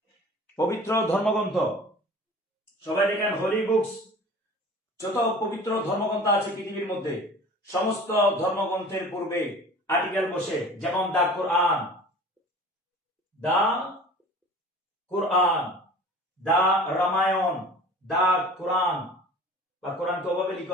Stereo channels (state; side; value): normal; both; correlation 0.42